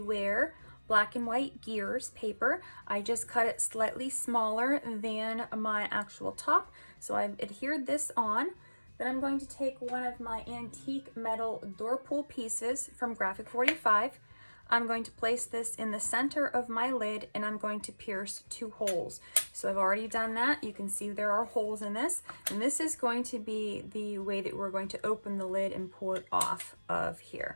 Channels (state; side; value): inverted; both; correlation -1.00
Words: black and white gears paper. I just cut it slightly smaller than my actual top, so I've adhered this on. Then I'm going to take one of my antique metal door pull pieces from Graphic 45. I'm going to place this in the center of my lid and I'm going to pierce 2 holes. So I've already done that. You can see there are holes in this, and this is going to be the way that we're going to open the lid and pull it off of